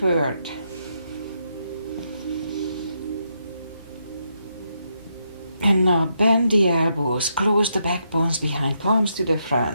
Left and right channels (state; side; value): inverted; both; correlation -0.80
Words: And now bend the elbows, close the backbones behind, palms to the